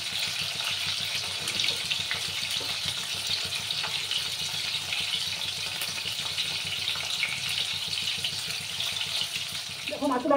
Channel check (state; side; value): identical; both; correlation 1.00